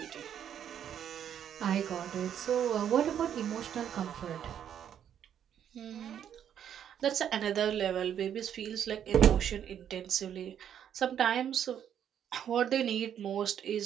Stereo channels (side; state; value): left; quieter; 9.4 dB